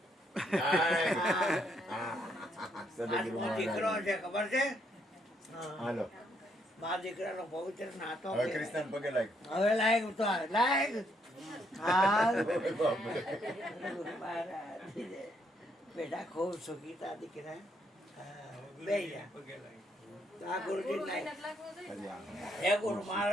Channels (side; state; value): both; normal; correlation 0.73